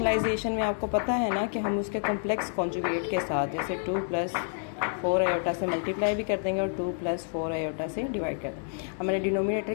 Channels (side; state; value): right; silent; digital silence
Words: में आपको पता है ना कि हम उसके कॉम्प्लेक्स कॉन्जुगेट के साथ जैसे 2 प्लस 4 आयोटा से मल्टीप्लाई भी कर देंगे और 2 प्लस 4 आयोटा से डिवाइड कर देंगे। हमने डिनोमिनेटर